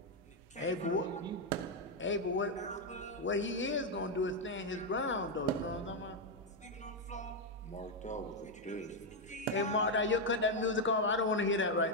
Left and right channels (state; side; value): normal; both; correlation 0.02